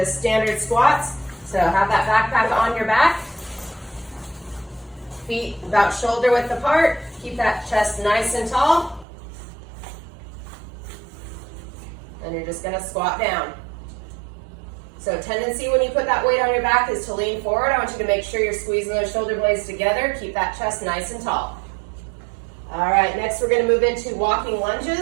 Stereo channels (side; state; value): left; drops out; at 9.1 s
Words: standard squats. So have that backpack on your back. Feet about shoulder width apart. Keep that chest nice and tall. And you're just going to squat down. So tendency when you put that weight on your back is to lean forward. I want you to make sure you're squeezing those shoulder blades together. Keep that chest nice and tall. All right, next we're going to move into walking